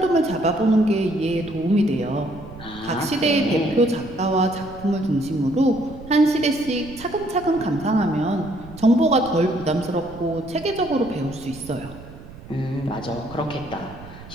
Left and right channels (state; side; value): noise; right; rumble, 17 dB below the sound